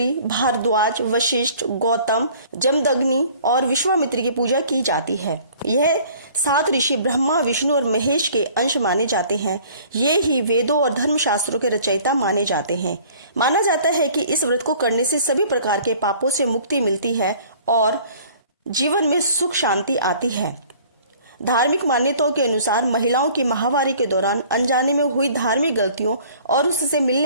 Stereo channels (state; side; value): inverted; both; correlation -0.52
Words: भारद्वाज, वशिष्ठ, गौतम, जमदग्नि और विश्वामित्र की पूजा की जाती है। यह 7 ऋषि ब्रह्मा, विष्णु और महेश के अंश माने जाते हैं। ये ही वेदों और धर्मशास्त्रों के रचयिता माने जाते हैं। माना जाता है कि इस व्रत को करने से सभी प्रकार के पापों से मुक्ति मिलती है और जीवन में सुख शांति आती है। धार्मिक मान्यताओं के अनुसार महिलाओं की माहवारी के दौरान अनजाने में हुई धार्मिक गलतियों और उससे